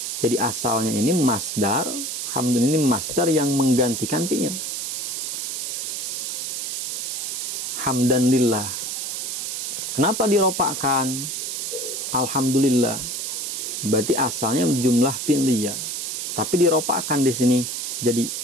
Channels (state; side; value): noise; right; hiss, 3 dB below the sound